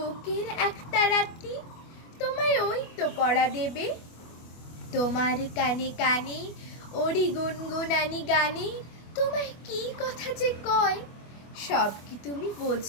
একটা রাতি তোমায় ওই তো পড়া দেবে। তোমার কানে কানে ওরি গুনগুনানি গানে, তোমায় কি কথা যে কয়, সব কি তুমি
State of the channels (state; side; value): late; right; 25 ms